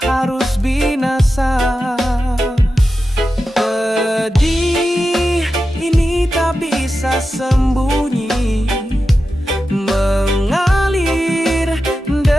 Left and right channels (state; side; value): normal; both; correlation 0.91